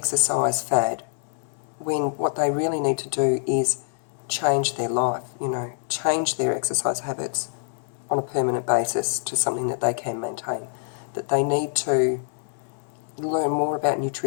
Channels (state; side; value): silent; right; digital silence